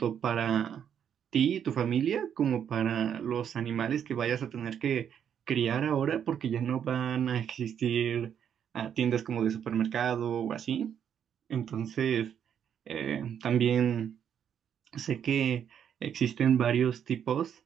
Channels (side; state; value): left; quieter; 8.6 dB